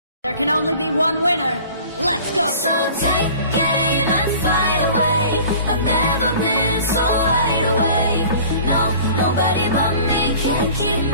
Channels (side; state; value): both; inverted; correlation -0.45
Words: There can only be one winner. Let's go! So take aim and fly away. I've never been so wide awake. No, nobody but me can keep